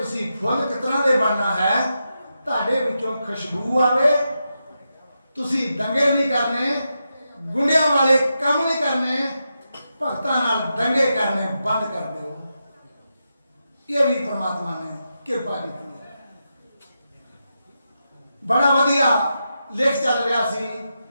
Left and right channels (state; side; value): inverted; both; correlation -0.87